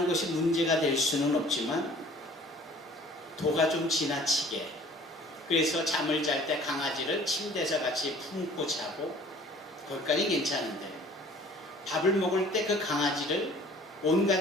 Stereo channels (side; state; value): both; normal; correlation 0.51